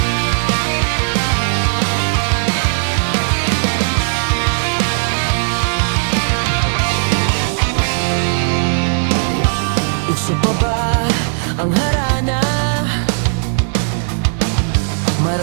Uso pa ba ang harana?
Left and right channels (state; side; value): silent; left; 69 dB below the other